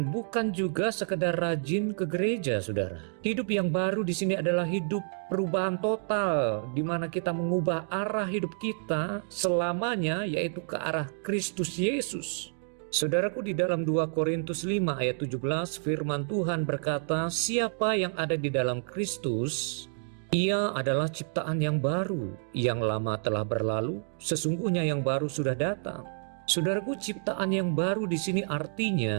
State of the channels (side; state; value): left; silent; 58 dB below the other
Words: bukan juga sekedar rajin ke gereja, saudara. Hidup yang baru di sini adalah hidup perubahan total, di mana kita mengubah arah hidup kita selamanya, yaitu ke arah Kristus Yesus. Saudaraku, di dalam 2 Korintus 5 ayat 17 firman Tuhan berkata, siapa yang ada di dalam Kristus, ia adalah ciptaan yang baru, yang lama telah berlalu, sesungguhnya yang baru sudah datang. Saudaraku, ciptaan yang baru di sini